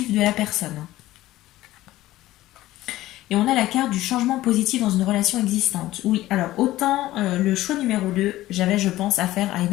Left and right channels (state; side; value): quieter; right; 15.9 dB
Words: de la personne. Et on a la carte du changement positif dans une relation existante. Oui, alors autant le choix numéro 2, j'avais, je pense, affaire à